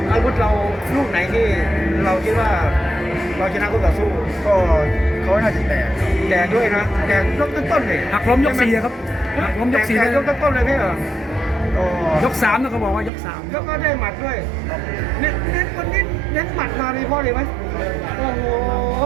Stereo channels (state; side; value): drops out; left; at 13.1 s